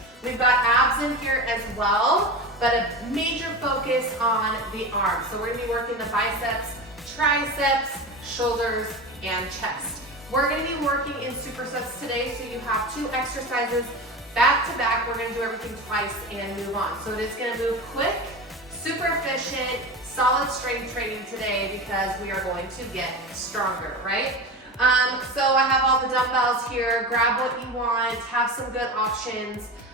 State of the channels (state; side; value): normal; both; correlation 0.26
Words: We've got abs in here as well, but a major focus on the arms. So we're gonna be working the biceps, triceps, shoulders, and chest. We're gonna be working in supersets today, so you have 2 exercises back to back. We're gonna do everything twice and move on. So it is gonna move quick, super efficient, solid strength training today because we are going to get stronger, right? So I have all the dumbbells here. Grab what you want, have some good options.